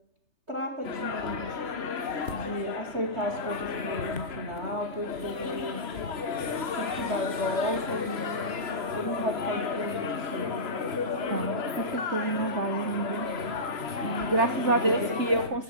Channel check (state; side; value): late; left; 3.0 ms